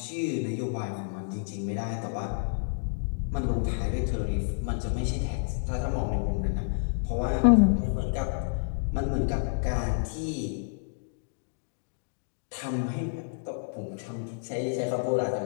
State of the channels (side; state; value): right; silent; digital silence